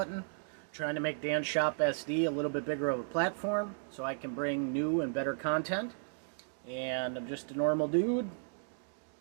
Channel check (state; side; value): silent; left; digital silence